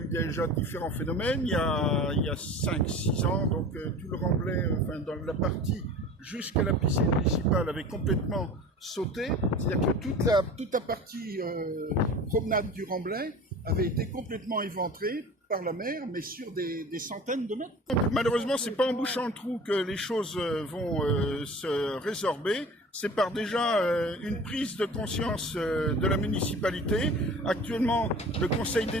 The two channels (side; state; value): both; normal; correlation 0.39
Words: déjà différents phénomènes, il y a 5-6 ans, donc tout le remblai, enfin dans la partie jusqu'à la piscine municipale avait complètement sauté, c'est-à-dire que toute la partie promenade du remblai avait été complètement éventrée par la mer, mais sur des centaines de mètres. Donc, malheureusement, c'est pas en bouchant le trou que les choses vont se résorber. C'est par déjà une prise de conscience de la municipalité. Actuellement, le Conseil